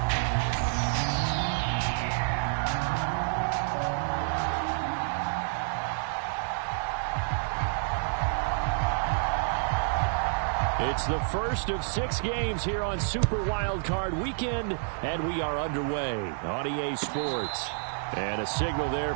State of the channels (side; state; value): left; silent; 59 dB below the other